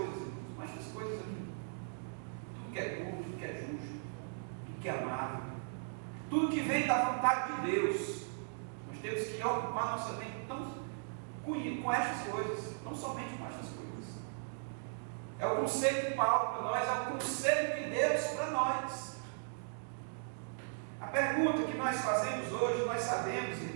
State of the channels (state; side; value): silent; left; digital silence